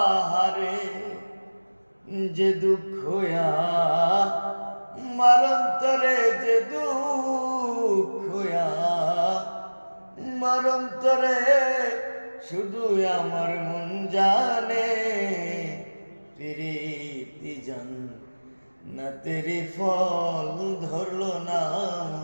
যে দুঃখ আমার অন্তরে, যে দুঃখ আমার অন্তরে, শুধু আমার মন জানে। প্রীতি জান না তেরি ফল ধরলো না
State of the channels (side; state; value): both; inverted; correlation -1.00